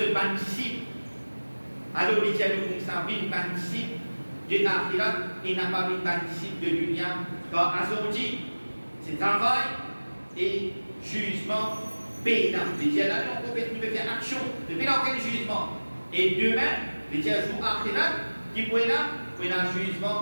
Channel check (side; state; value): both; inverted; correlation -1.00